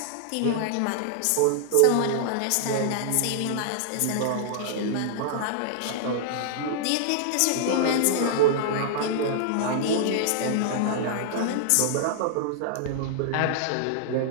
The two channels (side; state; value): both; different; correlation -0.01